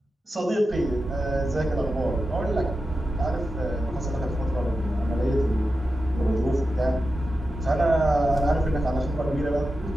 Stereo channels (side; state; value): both; normal; correlation 0.91